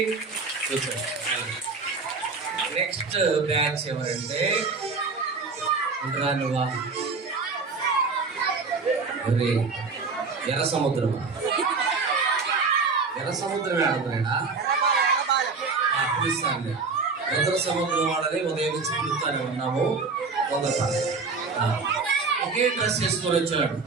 నెక్స్ట్ బ్యాచ్ ఎవరంటే నువ్వా ఎర్ర సముద్రం ఆడుతున్నాడా పిలుస్తాను ఎర్ర సముద్రం వాడని ఉదయం నుంచి పిలుస్తానే ఉన్నాము ఒకే డ్రెస్ వేసుకొని వచ్చాడు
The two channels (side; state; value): left; quieter; 4.5 dB